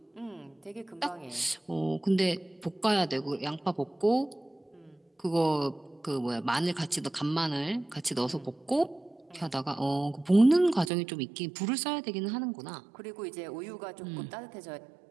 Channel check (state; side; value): drops out; left; at 10.9 s